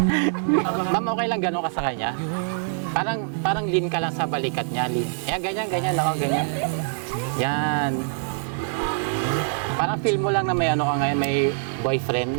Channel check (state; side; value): silent; left; 62 dB below the other